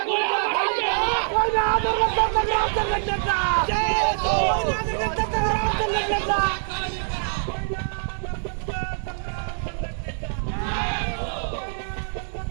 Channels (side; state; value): left; silent; digital silence